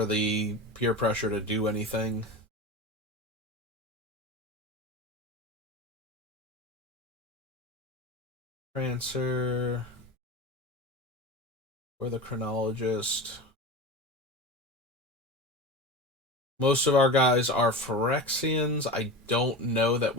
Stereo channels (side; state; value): both; normal; correlation 0.29